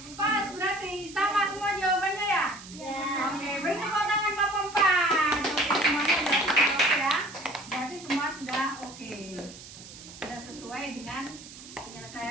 Pas, berarti sama semua jawabannya ya? Ya. Oke, beri tepuk tangan kelompok 4. Oke, semuanya sudah oke ya. Berarti semua sudah oke. Sudah sesuai dengan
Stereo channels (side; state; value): right; noise; hiss, 16 dB below the sound